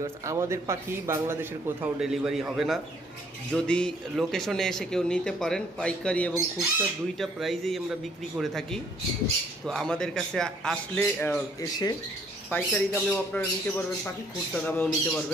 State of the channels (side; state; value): both; normal; correlation 0.64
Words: আমাদের পাখি বাংলাদেশের কোথাও ডেলিভারি হবে না। যদি লোকেশনে এসে কেউ নিতে পারেন, পাইকারি এবং খুচরা দুইটা প্রাইজেই আমরা বিক্রি করে থাকি। তো আমাদের কাছে আসলে এসে পাইকারি দামেও আপনারা নিতে পারবেন পাখি, খুচরা দামেও নিতে